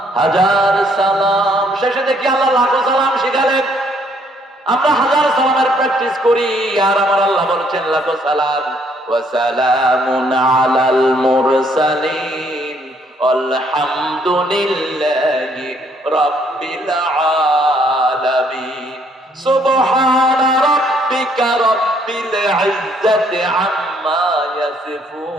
হাজার সালাম, শেষে দেখি আল্লাহ লাখো সালাম শিখালেন। আমরা হাজার সালামের প্র্যাকটিস করি, আর আমার আল্লাহ বলছেন লাখো সালাম। ওয়া সালামুন আলাল মুরসালিন আলহামদুলিল্লাহি রাব্বিল আলামিন। সুবহানা রাব্বিকা রাব্বিল ইজ্জাতি আম্মা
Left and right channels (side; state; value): both; normal; correlation 0.67